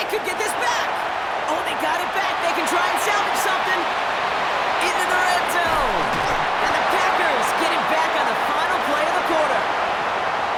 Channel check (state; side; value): identical; both; correlation 1.00